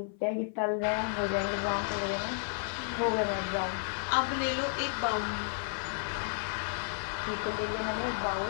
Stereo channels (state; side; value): silent; right; 56 dB below the other